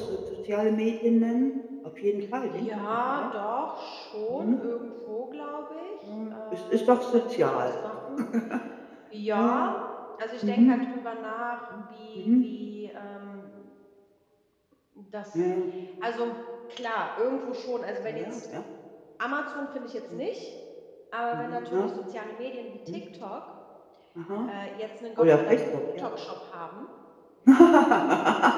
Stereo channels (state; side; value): identical; both; correlation 1.00